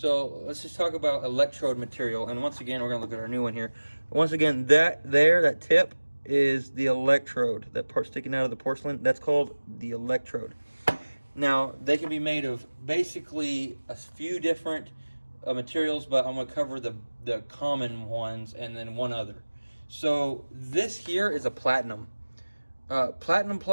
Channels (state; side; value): inverted; both; correlation -1.00